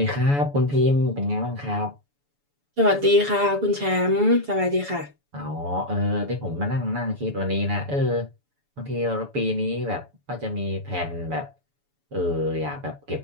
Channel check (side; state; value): left; late; 7.0 ms